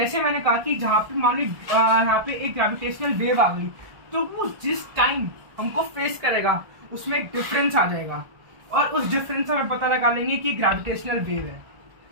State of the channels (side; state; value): left; late; 1.5 ms